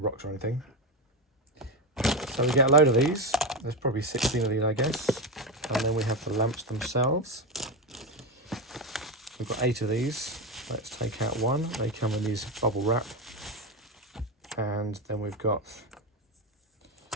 or anything. So we get a load of these. There's probably 16 of these, I guess. And then we have the lamps themselves. We've got 8 of these. Let's take out one. They come in these bubble wrap. And then we've got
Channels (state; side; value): normal; both; correlation 0.16